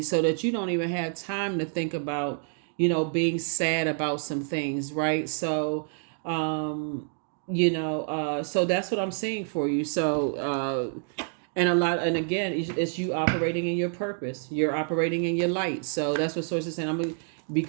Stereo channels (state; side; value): silent; left; 60 dB below the other